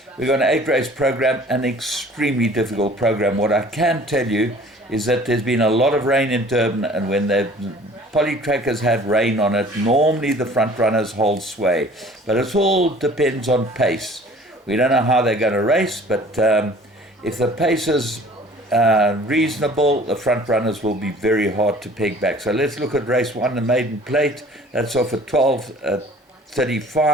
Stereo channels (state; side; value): normal; both; correlation 0.50